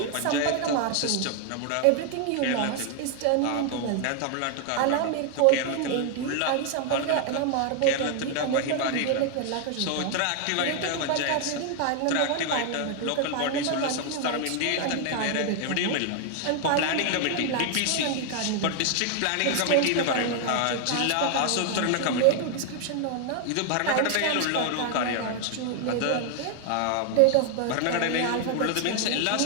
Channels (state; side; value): different; both; correlation 0.00